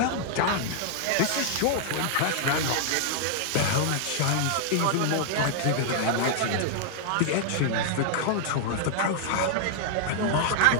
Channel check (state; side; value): different; both; correlation -0.01